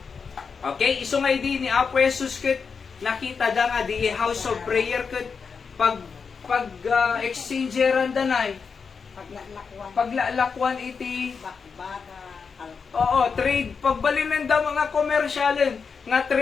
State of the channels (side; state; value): right; quieter; 5.6 dB